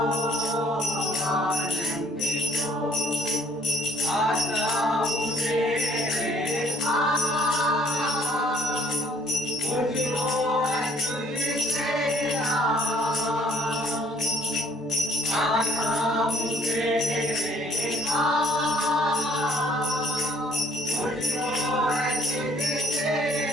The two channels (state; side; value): normal; both; correlation 0.62